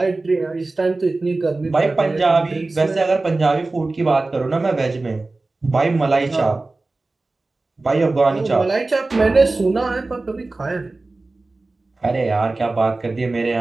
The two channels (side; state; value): left; quieter; 3.3 dB